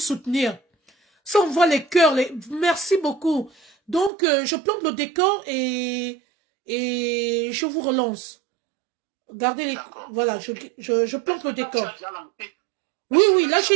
Ça, on voit les cœurs. Merci beaucoup. Donc, je plante le décor et je vous relance. Gardez les... Voilà, je plante le décor. Oui, oui, là,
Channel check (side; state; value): left; drops out; at 4.1 s